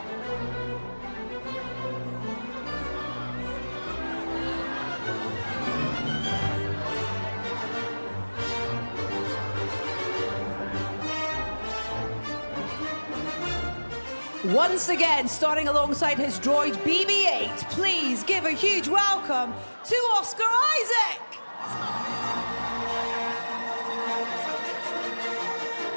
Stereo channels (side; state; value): both; inverted; correlation -1.00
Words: Once again, starting alongside his droid BB-8, please give a huge welcome to Oscar Isaac.